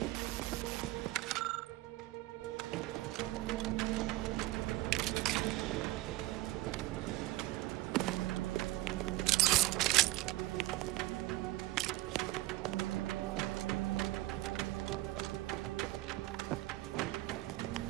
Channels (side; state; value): left; quieter; 18.3 dB